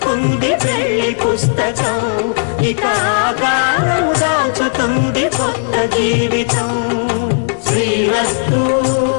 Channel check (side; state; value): right; silent; 67 dB below the other